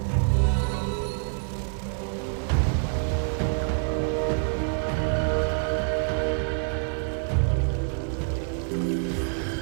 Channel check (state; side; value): silent; left; 61 dB below the other